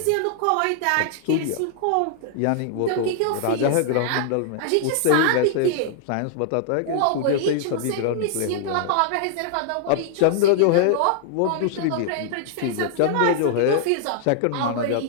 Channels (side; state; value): both; different; correlation -0.01